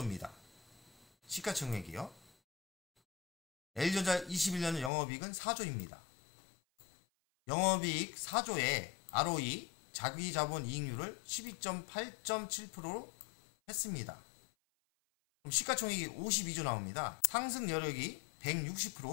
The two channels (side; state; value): right; drops out; at 4.9 s